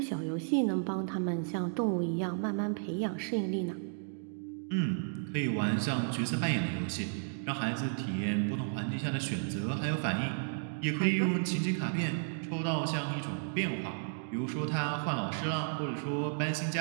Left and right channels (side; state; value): left; silent; digital silence